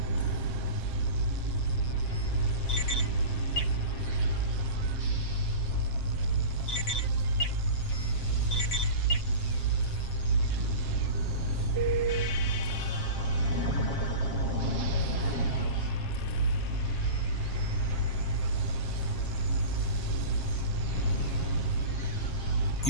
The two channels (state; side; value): late; right; 7.5 ms